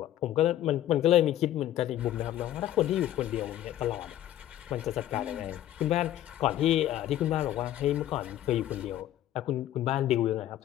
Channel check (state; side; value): quieter; right; 12.9 dB